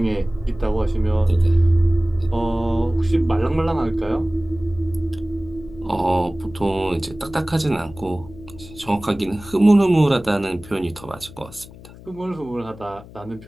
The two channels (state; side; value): noise; left; hum, 19 dB below the sound